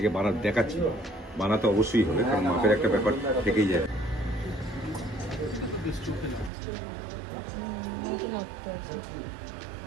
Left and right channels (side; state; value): left; drops out; at 6.5 s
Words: দেখাচ্ছি, বানাতে অবশ্যই হবে, কারণ মাপের একটা ব্যাপার থেকেই যায়।